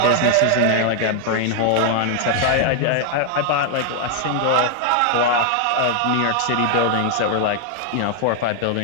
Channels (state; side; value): different; both; correlation 0.00